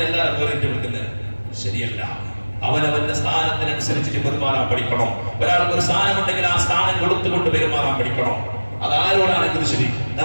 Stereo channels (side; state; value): both; inverted; correlation -1.00